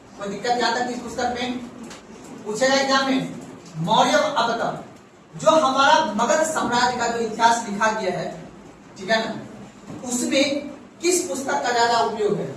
कोई दिक्कत आता है इस पुस्तक में? पूछेगा एग्जाम में मौर्य। अब बताओ, जो हमारा मगध साम्राज्य का जो इतिहास लिखा गया है, ठीक है ना, उसमें किस पुस्तक का ज्यादा उपयोग है?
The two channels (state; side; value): identical; both; correlation 1.00